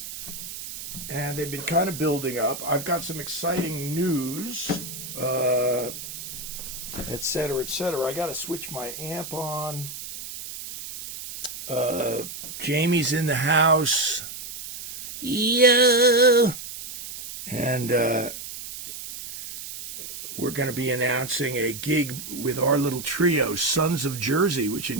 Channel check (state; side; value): noise; right; hiss, 10 dB below the sound